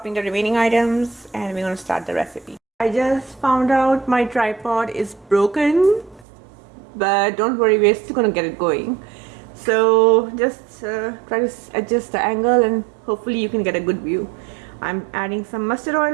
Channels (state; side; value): drops out; left; at 6.2 s